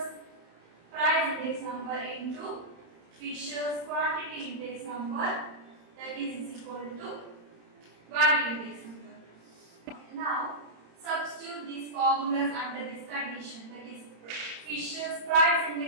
price index number into Fisher's quantity index number, that is equal to value index number. Okay, now substitute these formulas under this condition, that is Fisher's price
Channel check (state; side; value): late; left; 31 ms